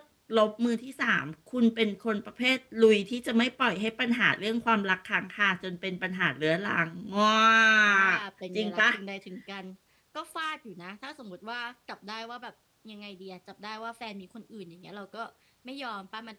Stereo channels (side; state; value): both; identical; correlation 1.00